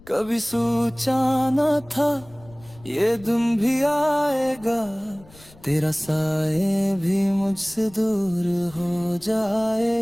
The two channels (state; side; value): noise; left; rumble, 23 dB below the sound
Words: कभी सोचा न था ये दिन भी आएगा, तेरा साए भी मुझसे दूर हो